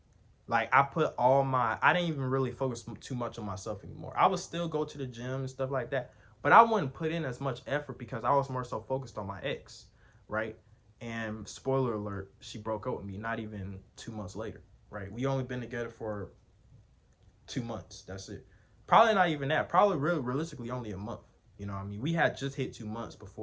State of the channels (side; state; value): both; identical; correlation 1.00